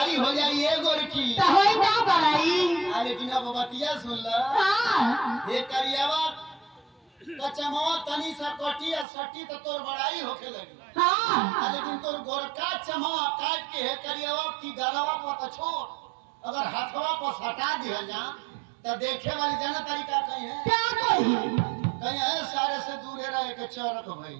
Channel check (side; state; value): left; drops out; at 9.1 s